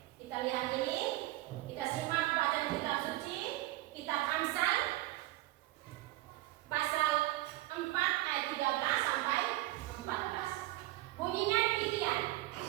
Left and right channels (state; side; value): quieter; left; 17.7 dB